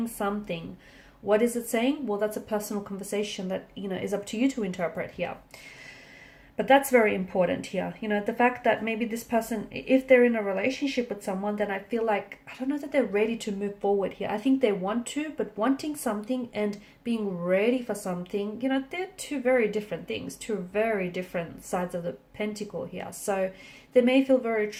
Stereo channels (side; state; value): both; identical; correlation 1.00